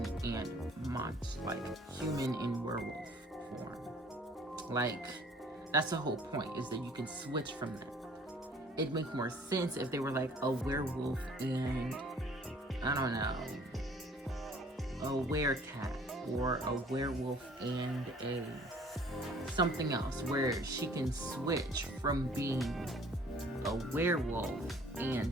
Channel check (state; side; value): normal; both; correlation 0.54